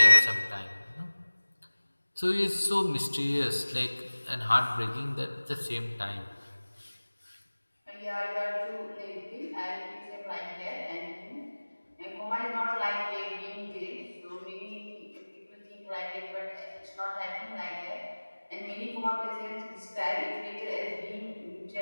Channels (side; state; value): both; inverted; correlation -1.00